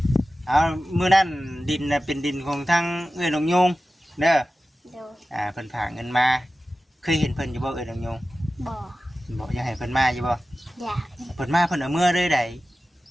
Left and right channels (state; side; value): normal; both; correlation 0.95